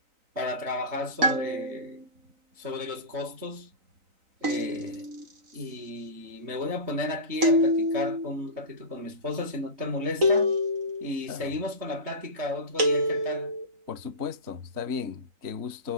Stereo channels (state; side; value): late; left; 4.0 ms